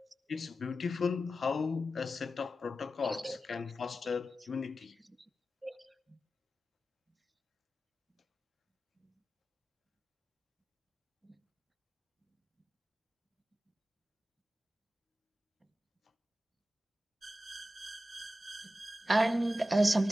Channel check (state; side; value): normal; both; correlation 0.92